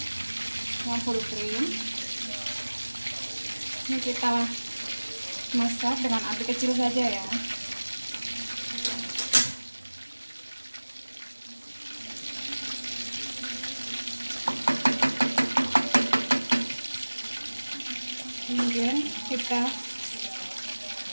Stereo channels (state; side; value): inverted; both; correlation -1.00